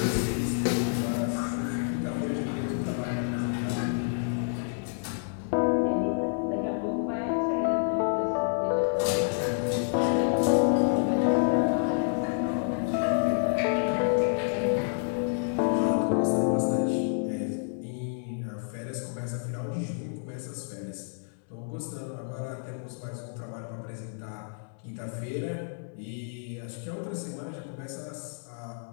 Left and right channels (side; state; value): right; silent; digital silence